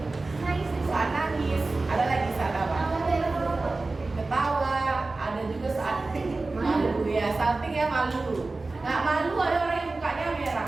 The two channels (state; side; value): quieter; left; 3.4 dB